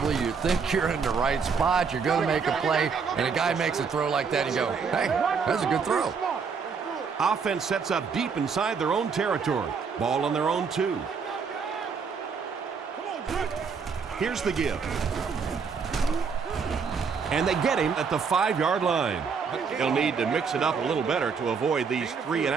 you think you're in the right spot, you're going to make a play, and a guy makes a throw like that, and you go, hey, that's a good throw. Offense sets up deep inside their own territory. Ball on their own 2. Here's the give. And they get him at the 5-yard line. He'll need to mix it up a little better to avoid these 3 and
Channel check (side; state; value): left; quieter; 5.7 dB